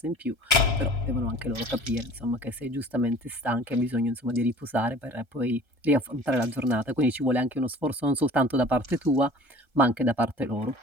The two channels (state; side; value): late; left; 1.3 ms